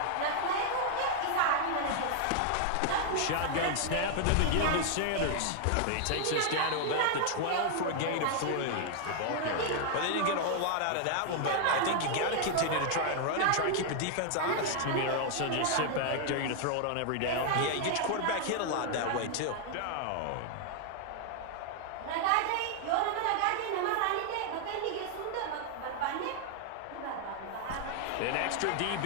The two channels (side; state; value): both; different; correlation 0.00